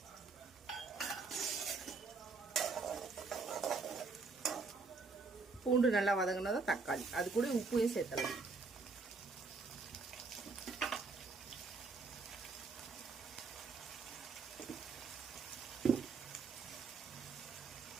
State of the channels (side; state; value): left; quieter; 4.2 dB